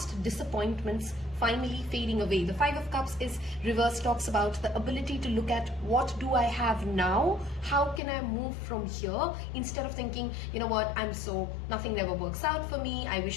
disappointments finally fading away. The 5 of Cups is reversed, talks about the ability to look at what do I have now, how can I move from here, instead of thinking, nothing never works out for me, I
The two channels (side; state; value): right; drops out; at 8.0 s